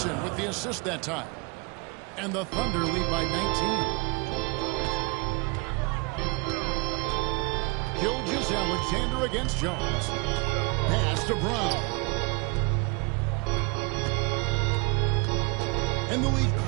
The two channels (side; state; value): left; quieter; 29.2 dB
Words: with the assist that time. And the Thunder lead by 19. Gilgeous-Alexander against Jones. Pass to Brown. And the league